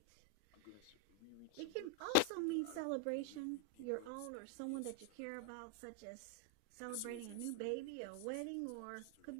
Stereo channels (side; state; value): both; different; correlation 0.00